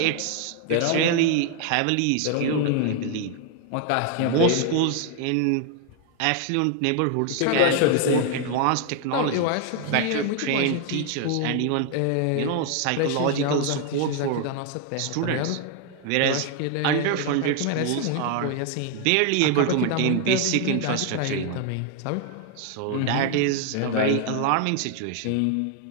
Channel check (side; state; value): both; different; correlation 0.00